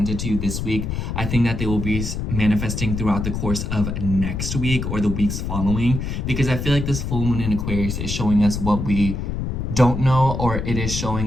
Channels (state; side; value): noise; left; rumble, 3 dB below the sound